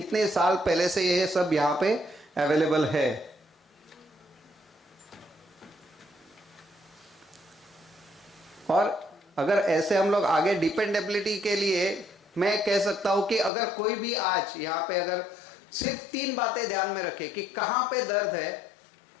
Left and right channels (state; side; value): drops out; right; at 13.5 s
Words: साल पहले से ये सब यहाँ पे अवेलेबल है। और अगर ऐसे हम लोग आगे डिपेंडेबिलिटी के लिए मैं कह सकता हूं कि अगर कोई भी आज यहाँ पे अगर सिर्फ 3 बातें ध्यान में रखे कि कहां पे दर्द है,